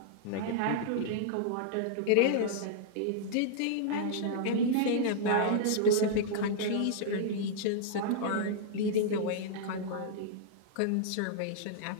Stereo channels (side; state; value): both; different; correlation -0.02